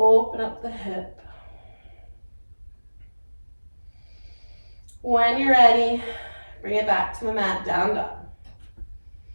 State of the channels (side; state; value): both; inverted; correlation -1.00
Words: up the hip. When you're ready, bring it back to the mat, down dog.